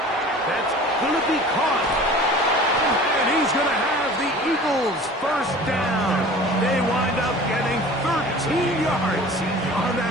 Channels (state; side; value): normal; both; correlation 0.43